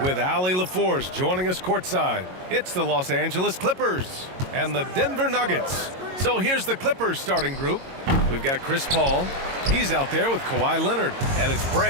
with Allie LaForce joining us courtside. It's the Los Angeles Clippers and the Denver Nuggets. So here's the Clippers starting group. We've got Chris Paul. He's out there with Kawhi Leonard, and it's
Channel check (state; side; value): late; left; 22 ms